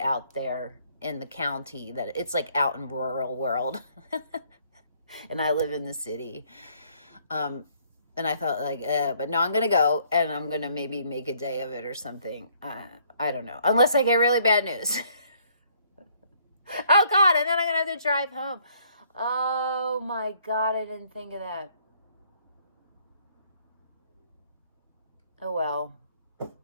there in the county, that it's out in rural world. And I live in the city. And I thought but no, I'm going to go, and I'm going to maybe make a day of it or something. I don't know. Unless I get really bad news. Oh God. And then I'm going to have to drive home. Oh my God. I didn't think of that. Oh well.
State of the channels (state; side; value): inverted; both; correlation -0.64